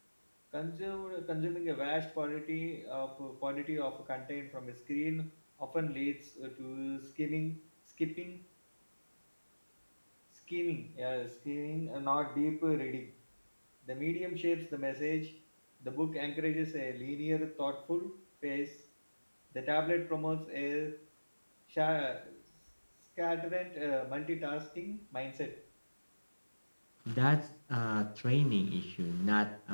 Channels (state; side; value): inverted; both; correlation -1.00